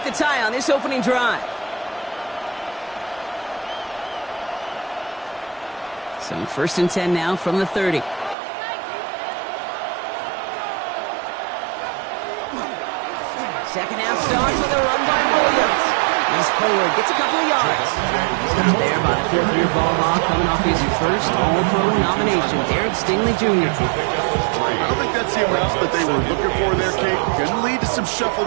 the tie on this opening drive. So 1st and 10 now from the 30. Second half starts with a run by Williams. He's forward, gets a couple of yards. Stopped there by the 4th-year ball hawk coming off his first All-Pro nomination, Derek Stingley Jr. I don't think that's the amount that they were looking for there, Kate. Going to lead to some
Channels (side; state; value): left; drops out; at 8.3 s